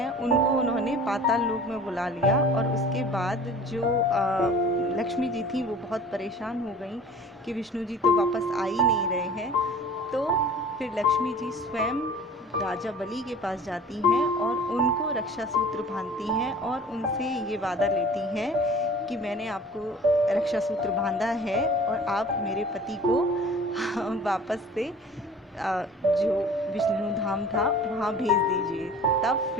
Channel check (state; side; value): normal; both; correlation 0.44